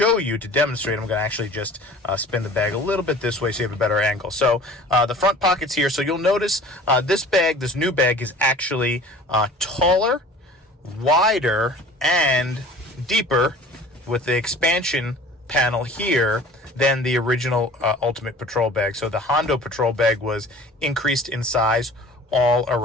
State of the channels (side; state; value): both; normal; correlation 0.45